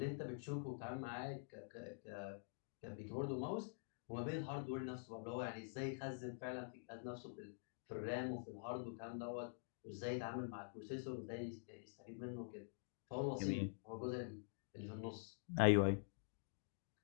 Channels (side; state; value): right; silent; digital silence